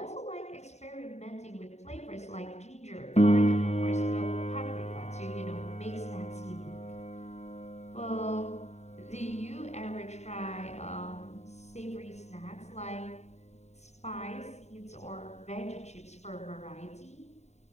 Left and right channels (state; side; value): late; right; 0.32 ms